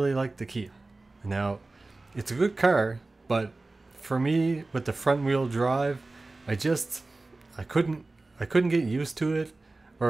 like the Kia. Now, it's a good car, but for me, with the front wheel drive, I couldn't get used to it.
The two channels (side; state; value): left; quieter; 3.2 dB